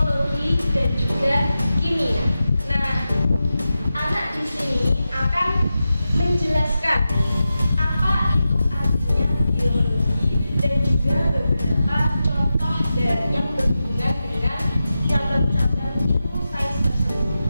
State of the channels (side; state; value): both; inverted; correlation -0.92